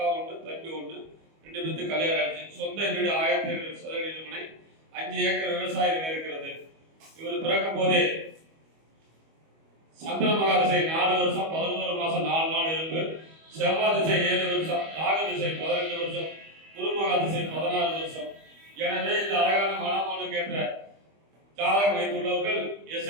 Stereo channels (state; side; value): late; left; 25 ms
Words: 1 தம்பி 1, 2 பேருக்கு கல்யாணம் ஆயிடுச்சு. சொந்த வீடு 1700 சதுரடி மனை, 5 ஏக்கர் விவசாயம் இருக்கிறது. இவர் பிறக்கும் போதே சந்திர மகாதிசை 4 வருஷம் 11 மாசம் 4 நாள் இருக்கு. செவ்வாய் திசை 7 வருஷம், ராகு திசை 12 வருஷம், குரு மகாதிசை 16 வருஷம். எனவே இந்த அழகான மணமகனுக்கு ஏற்ற ஜாதகம் வைத்துள்ளவர்கள்